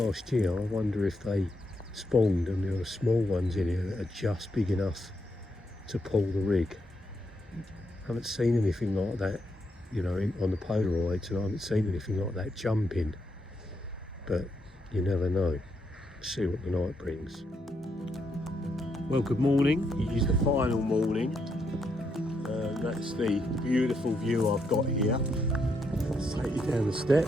year, I wonder if they spawned and there are small ones in here that are just big enough to pull the rig. I haven't seen anything like that, you know, on the Polaroids, and I haven't seen anything like that jumping. But you never know. See what the night brings. Well, good morning. It is the final morning. That's the beautiful view I've got here. Let's take you down the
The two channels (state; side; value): normal; both; correlation 0.79